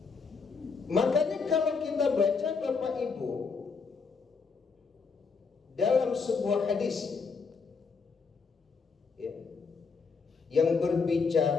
Makanya kalau kita baca Bapak Ibu dalam sebuah hadis ya, yang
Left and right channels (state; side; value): quieter; right; 5.0 dB